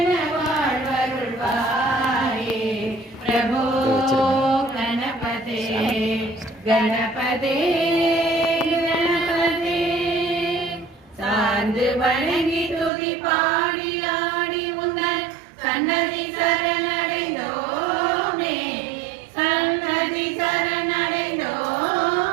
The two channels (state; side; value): drops out; left; at 12.9 s